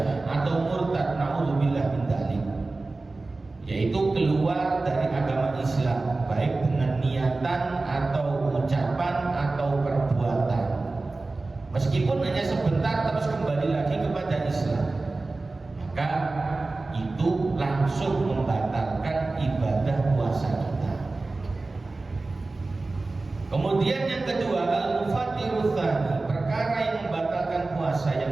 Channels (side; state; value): left; quieter; 3.4 dB